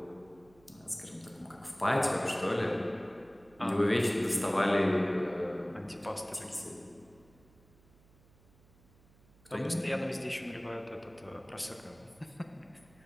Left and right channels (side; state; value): right; noise; hum, 28 dB below the sound